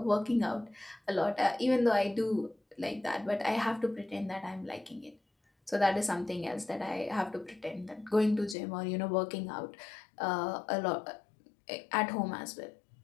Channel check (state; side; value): drops out; right; at 8.6 s